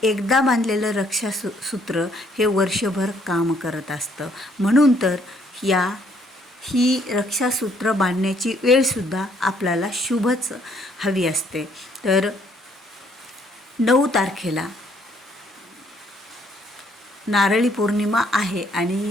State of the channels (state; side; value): normal; both; correlation 0.66